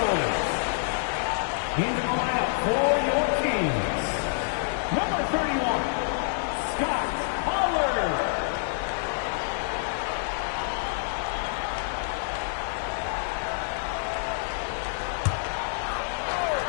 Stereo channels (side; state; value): right; silent; 60 dB below the other